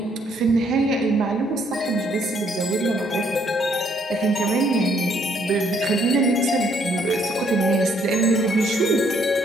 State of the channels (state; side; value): normal; both; correlation 0.68